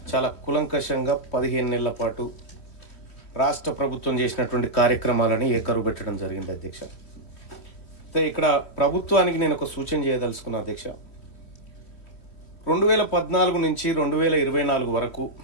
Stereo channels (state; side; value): late; right; 3.1 ms